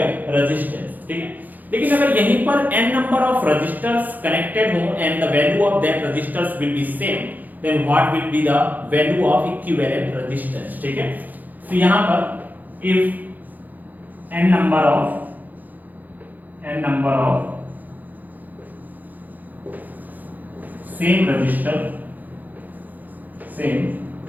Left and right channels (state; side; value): late; left; 0.083 ms